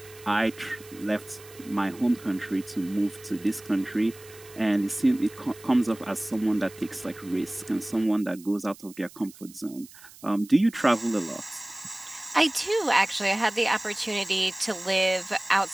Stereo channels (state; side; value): noise; right; hiss, 21 dB below the sound